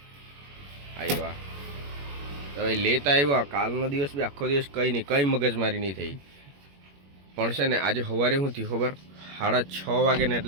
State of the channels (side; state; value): left; late; 21 ms